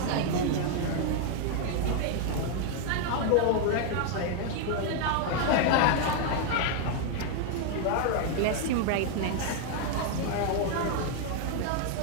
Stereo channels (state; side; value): different; both; correlation 0.00